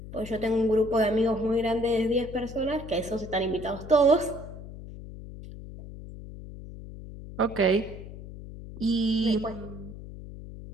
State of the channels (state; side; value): noise; left; hum, 13 dB below the sound